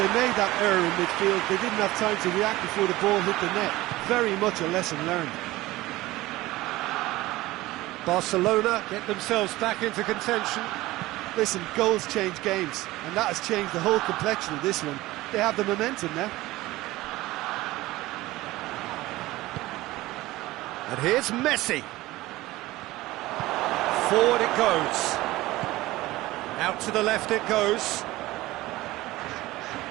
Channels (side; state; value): left; quieter; 18.2 dB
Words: made that error in midfield, they didn't have time to react before the ball hit the net. Very much a lesson learned. Barcelona get themselves back into contention. Listen, goals change games, and that has changed the whole complexion of this one. They have the momentum now. And here's Messi. Forward it goes. Out to the left it goes.